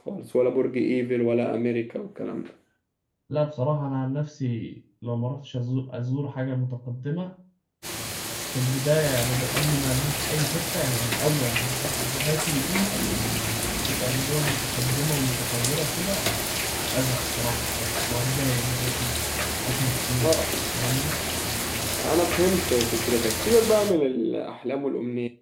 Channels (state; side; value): identical; both; correlation 1.00